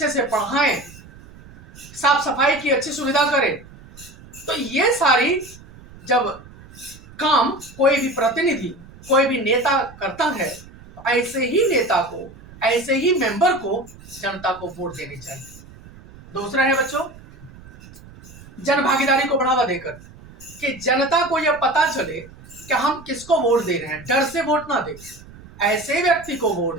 से पढ़ाएं, साफ सफाई की अच्छी सुविधा करे। तो ये सारी जब काम कोई भी प्रतिनिधि, कोई भी नेता करता है, तो ऐसे ही नेता को, ऐसे ही मेंबर को जनता को वोट देनी चाहिए। दूसरा है बच्चों, जन भागीदारी को बढ़ावा देकर कि जनता को यह पता चले कि हम किसको वोट दे रहे हैं। डर से वोट ना दे, ऐसे व्यक्ति को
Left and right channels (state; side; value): noise; right; rumble, 20 dB below the sound